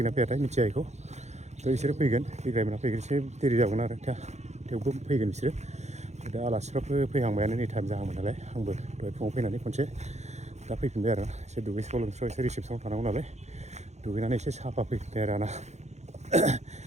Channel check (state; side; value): late; left; 0.33 ms